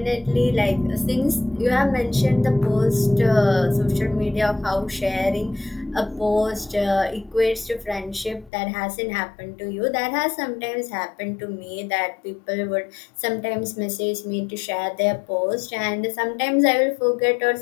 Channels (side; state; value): right; drops out; at 8.5 s